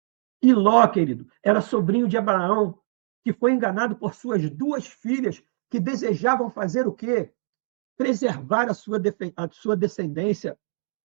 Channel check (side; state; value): left; silent; digital silence